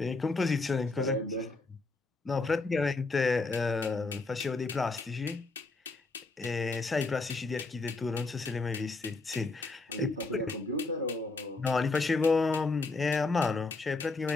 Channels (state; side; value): quieter; right; 3.6 dB